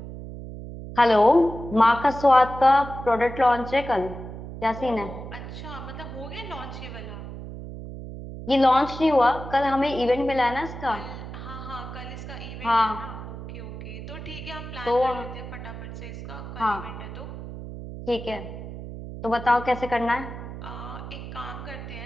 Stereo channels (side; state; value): right; noise; hum, 10 dB below the sound